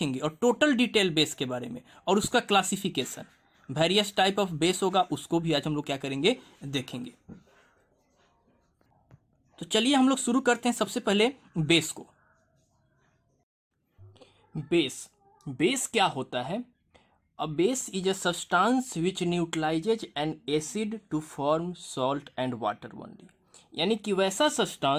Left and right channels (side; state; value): both; identical; correlation 1.00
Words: और टोटल डिटेल बेस के बारे में और उसका classification, various type of base होगा उसको भी आज हम लोग क्या करेंगे, देखेंगे। तो चलिए हम लोग शुरू करते हैं सबसे पहले बेस को। बेस क्या होता है? A base is a substance which neutralizes an acid to form salt and water only। यानी कि वैसा